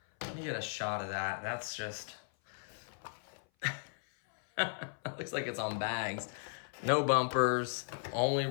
Let me get a shot of that. That's just... It looks like it's on bags. No bumpers. Only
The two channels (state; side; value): silent; right; 54 dB below the other